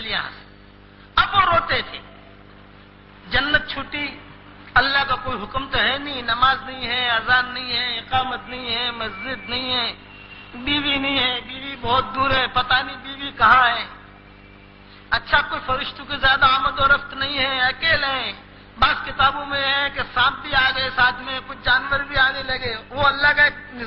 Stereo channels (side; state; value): both; identical; correlation 1.00